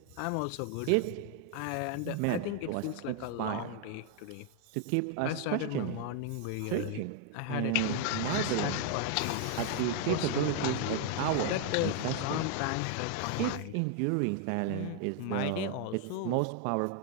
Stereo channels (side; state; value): both; different; correlation 0.01